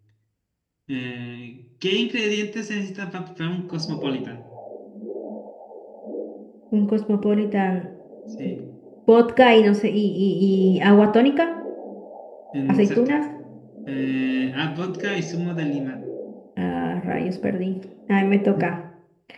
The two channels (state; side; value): identical; both; correlation 1.00